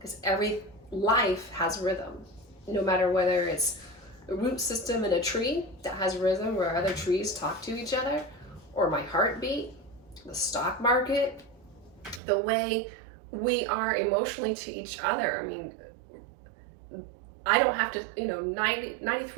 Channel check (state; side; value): drops out; left; at 12.2 s